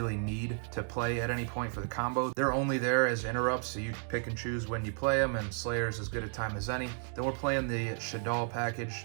need to play at any point for the combo. They're only there as interrupts, so you pick and choose when you play them, and Slayer's as good a time as any. Then we're playing the Shaddoll package,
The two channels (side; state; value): left; silent; 56 dB below the other